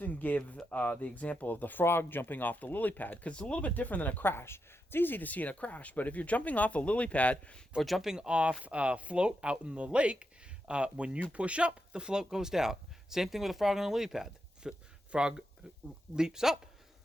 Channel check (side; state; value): both; normal; correlation 0.86